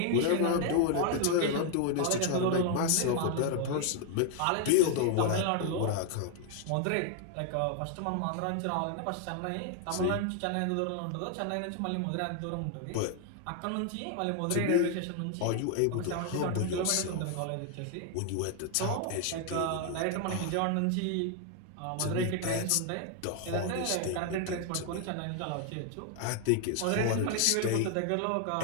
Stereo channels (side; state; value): both; different; correlation 0.00